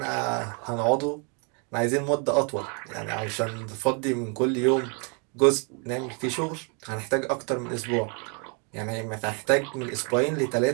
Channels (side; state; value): left; quieter; 37.0 dB